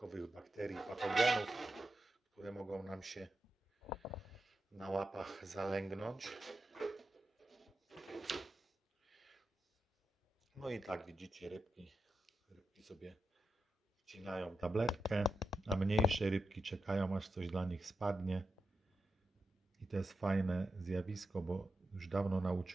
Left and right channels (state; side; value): normal; both; correlation 0.88